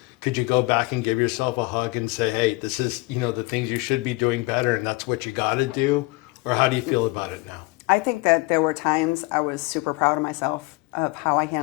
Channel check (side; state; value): right; quieter; 23.5 dB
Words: Could you go back and give yourself a hug and say, hey, this is, the things you should be doing better, and that's what you got to do? Or how do you feel about it now? I think that there were times I was super proud of myself, of how I